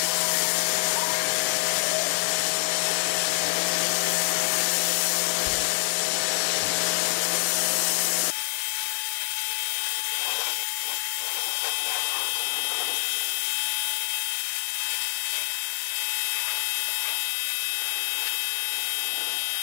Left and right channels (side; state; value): right; silent; digital silence